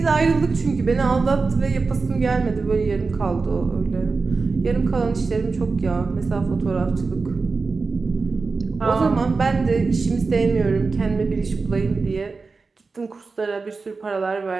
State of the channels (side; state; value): left; quieter; 4.3 dB